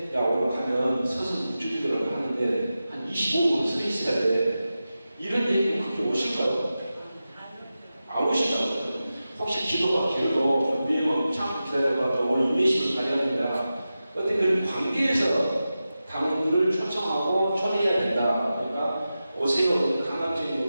야, 오늘 가면 서서 묵주기라고 하는데 한 25분 서 있어야 돼. 이런 얘기는 그렇게 오실까요? 안 오신다고. 혹시 기도가 길고, 내일 참 기다려봐. 오늘 인내심을 가져야 된다. 어떤 그런 관계에서 당원들을 초청하고 초대해야 된다. 그러니까 오세요. 강압적인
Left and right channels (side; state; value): both; inverted; correlation -0.93